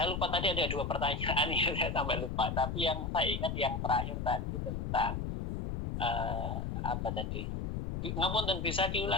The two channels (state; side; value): noise; left; rumble, 2 dB below the sound